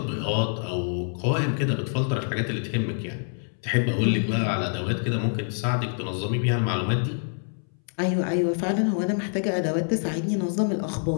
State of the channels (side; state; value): right; silent; 61 dB below the other